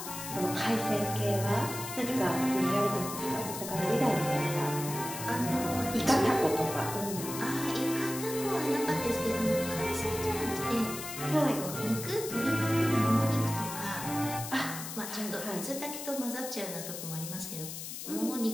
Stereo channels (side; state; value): left; noise; hiss, 8 dB below the sound